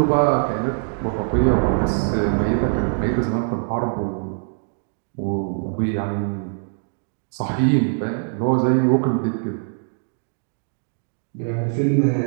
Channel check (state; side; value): silent; left; digital silence